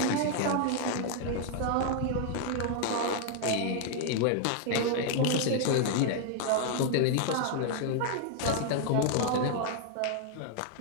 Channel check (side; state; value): both; different; correlation 0.00